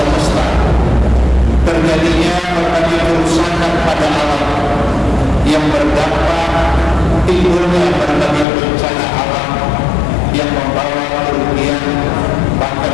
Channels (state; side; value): drops out; right; at 8.5 s